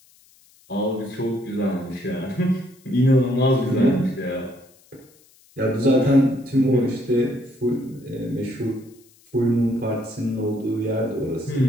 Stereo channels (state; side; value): noise; left; hiss, 30 dB below the sound